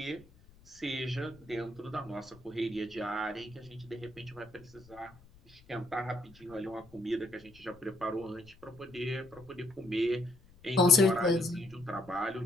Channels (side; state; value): left; noise; rumble, 25 dB below the sound